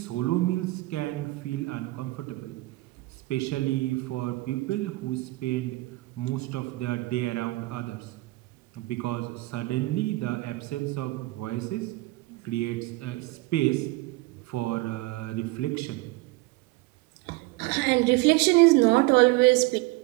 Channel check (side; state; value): left; quieter; 21.1 dB